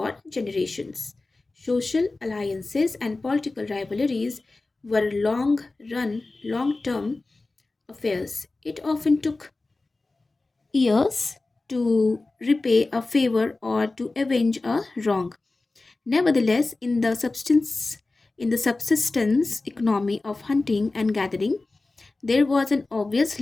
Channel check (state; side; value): quieter; right; 3.3 dB